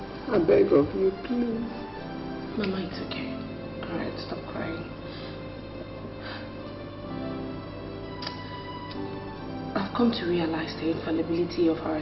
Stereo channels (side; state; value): both; identical; correlation 1.00